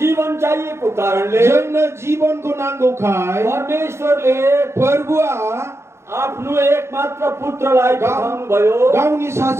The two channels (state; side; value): late; left; 0.13 ms